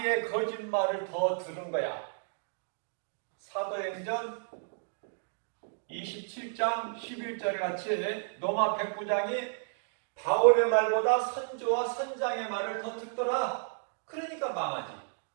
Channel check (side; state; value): left; silent; digital silence